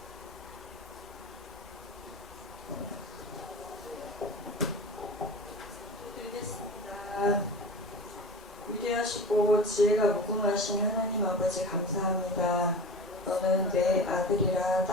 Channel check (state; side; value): normal; both; correlation 0.32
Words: 드리겠습니다. 위대하시고 지혜가 무궁하신 하나님 아버지 감사합니다. 너는 내 아들이라